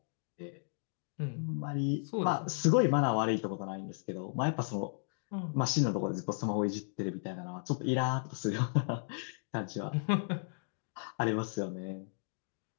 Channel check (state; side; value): silent; right; digital silence